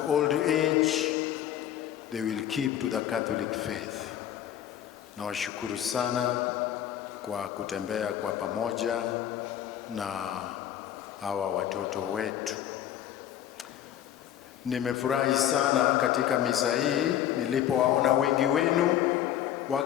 age, they will keep to the Catholic faith. Nawashukuru sana kwa kutembea kwa pamoja na hawa watoto wetu. Nimefurahi sana katika misa hii nilipowaona wengi wenu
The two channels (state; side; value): quieter; right; 11.0 dB